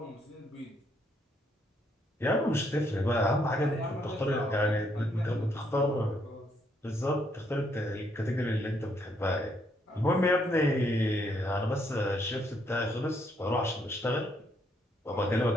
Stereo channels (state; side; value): normal; both; correlation 0.72